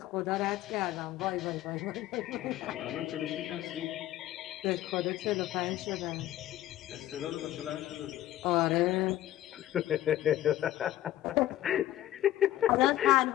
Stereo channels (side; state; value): right; quieter; 13.8 dB